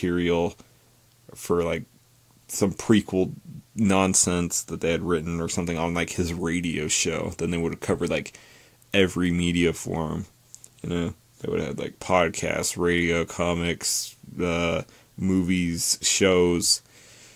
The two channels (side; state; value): both; identical; correlation 1.00